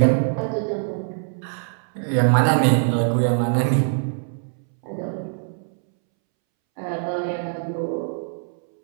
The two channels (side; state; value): left; silent; 63 dB below the other